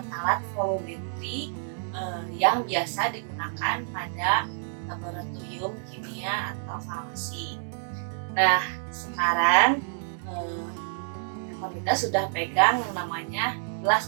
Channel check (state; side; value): silent; left; digital silence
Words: volumetri yang biasa digunakan pada laboratorium kimia atau farmasi. Nah, sekarang kita sudah pegang yang namanya